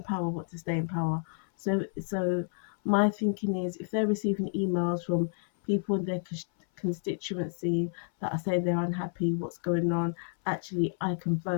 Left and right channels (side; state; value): right; silent; 58 dB below the other